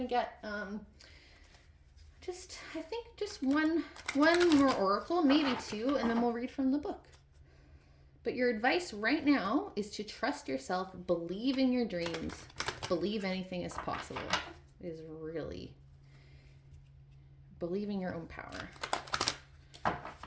get just one more oracle, maybe two, and then we'll read from the book. But your advice right now is to trust yourself, believe in your dreams, believe anything is possible. Is really believe in your own power,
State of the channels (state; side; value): identical; both; correlation 1.00